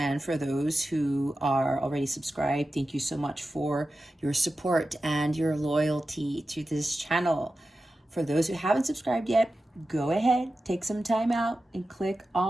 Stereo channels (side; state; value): both; normal; correlation 0.93